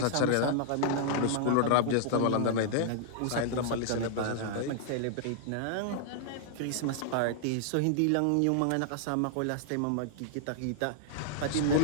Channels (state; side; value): different; both; correlation -0.01